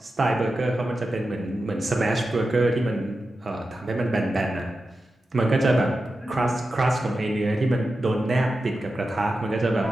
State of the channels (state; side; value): normal; both; correlation 0.91